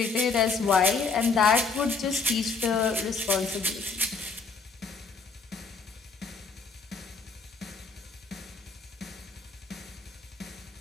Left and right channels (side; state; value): right; quieter; 4.4 dB